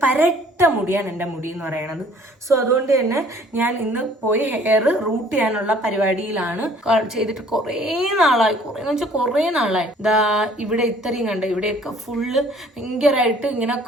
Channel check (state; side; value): normal; both; correlation 0.55